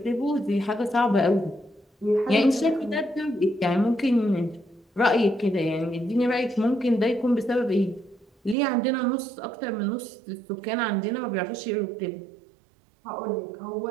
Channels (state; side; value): drops out; left; at 8.6 s